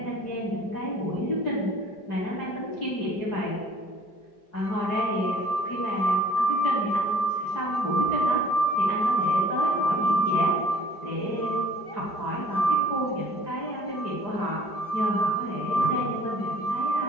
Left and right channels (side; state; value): right; late; 5.1 ms